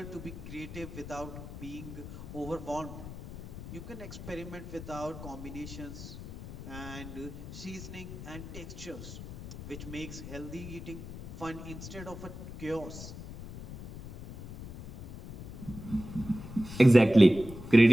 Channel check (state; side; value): noise; left; rumble, 11 dB below the sound